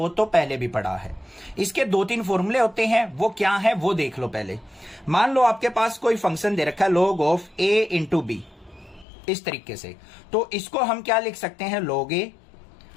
तो पहले भी पढ़ा है। इसके 2-3 फॉर्मूले होते हैं, वो क्या है वो देख लो पहले। मान लो आपके पास कोई फंक्शन दे रखा है log of a into b, इस तरीके से, तो इसको हम क्या लिख सकते हैं? log a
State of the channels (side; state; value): right; drops out; at 9.1 s